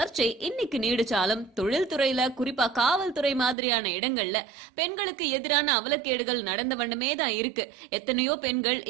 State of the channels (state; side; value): drops out; left; at 3.6 s